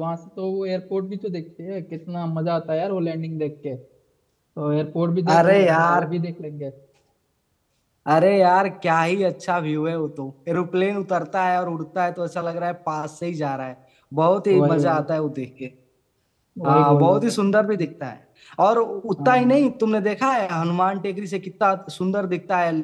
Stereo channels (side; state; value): both; identical; correlation 1.00